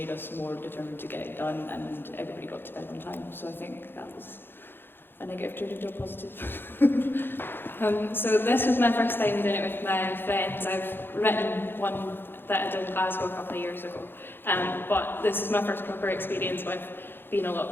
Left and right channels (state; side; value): late; right; 0.10 ms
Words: us more determined to get it done, and everybody got to bed on time. So I think that was a negative turned into a positive. So this was my first time doing it with my friends. I've written one that I did in Glasgow a couple of years ago, but this is my first proper experience with being a lot